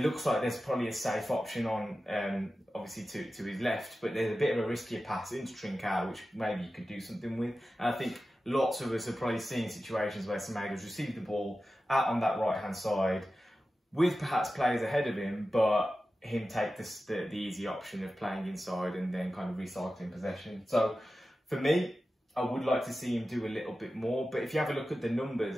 like there's probably a safe option on, obviously to his left, but there's a bit of a riskier pass into Trincao, which maybe you could do something with. And I think lots of us have probably seen situations where Semedo's received the ball out on that right-hand side with perhaps players ahead of him, but him take the easy option of playing inside and then kind of recycling possession. So for me, I would like to see him do a little bit more. But if you have a look at the numbers,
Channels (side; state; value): both; normal; correlation 0.94